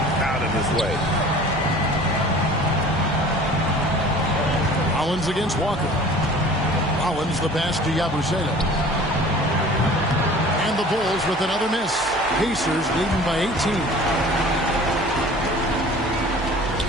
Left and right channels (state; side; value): noise; right; hum, 20 dB below the sound